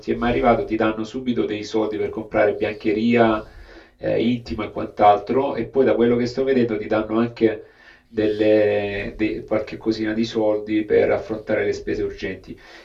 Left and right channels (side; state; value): both; identical; correlation 1.00